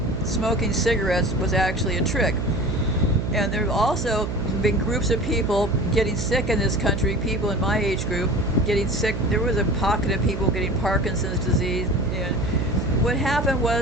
smoking cigarettes was actually a trick. And there have also been groups of people getting sick in this country, people in my age group getting sick. There was a pocket of people getting Parkinson's disease. And what happened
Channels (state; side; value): noise; right; hum, 3 dB below the sound